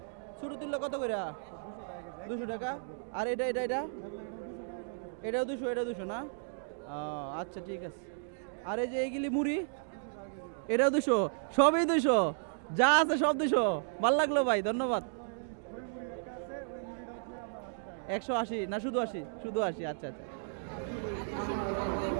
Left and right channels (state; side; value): silent; left; digital silence